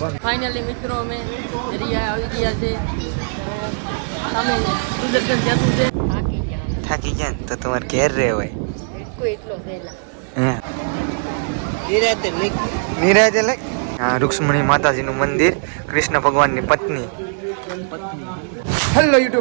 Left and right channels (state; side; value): silent; left; digital silence